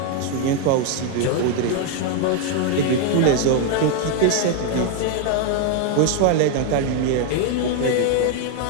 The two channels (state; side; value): different; both; correlation 0.01